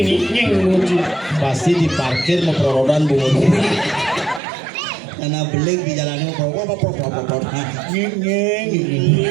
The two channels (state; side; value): drops out; left; at 4.4 s